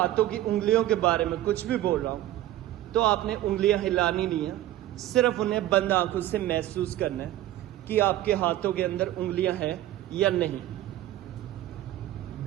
की उंगलियों के बारे में कुछ भी बोल रहा हूं तो आपने उंगलियां हिलानी नहीं है, सिर्फ उन्हें बंद आंखों से महसूस करना है कि आपके हाथों के अंदर उंगलियां हैं या नहीं।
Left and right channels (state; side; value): quieter; left; 14.2 dB